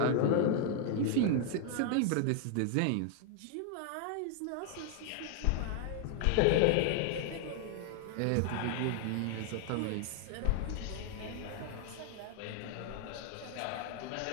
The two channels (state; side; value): different; both; correlation 0.00